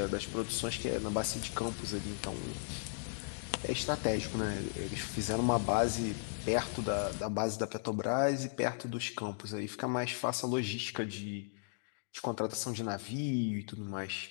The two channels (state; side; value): silent; right; digital silence